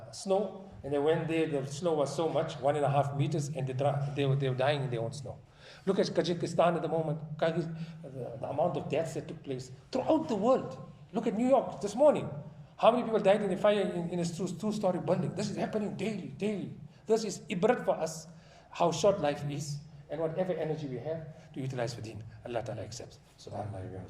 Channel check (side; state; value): both; identical; correlation 1.00